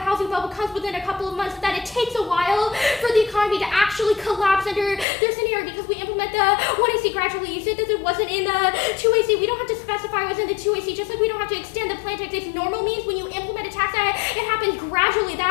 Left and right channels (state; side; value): drops out; right; at 5.1 s